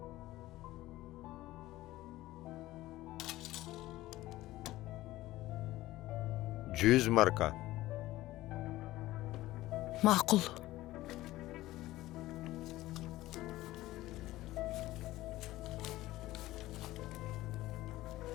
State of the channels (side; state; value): right; quieter; 16.7 dB